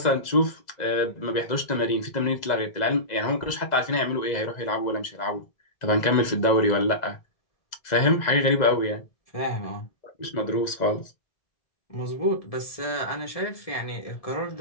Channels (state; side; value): late; right; 2.0 ms